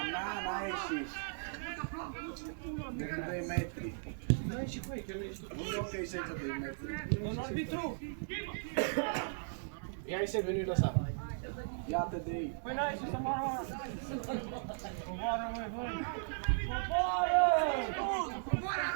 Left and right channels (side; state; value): left; silent; digital silence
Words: ieșit. De 2 metri. N-ai ieșit cu ei, că nu ești tu. Nu e ok să de 2 metri. Un arbitru! Ia-i Seb, nu-i lăsa. Iată de ei. Păi n-ai ieșit să moară! Coboară, măi, băi!